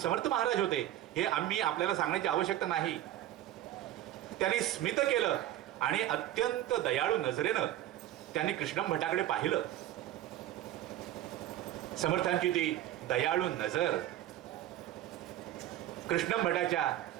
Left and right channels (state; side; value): quieter; left; 13.0 dB